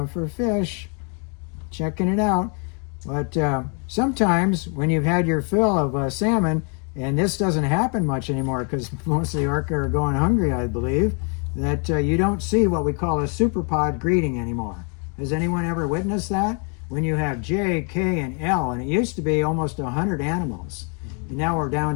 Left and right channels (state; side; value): quieter; right; 38.4 dB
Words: fish, checking it out. But sometimes when you've had your fill of salmon, and this doesn't happen much anymore because most of the orca are going hungry, I believe, that you don't see what we call a superpod greeting anymore. Has anyone ever witnessed that? When you have J, K, and L, and it used to be almost 100 animals. And now we're down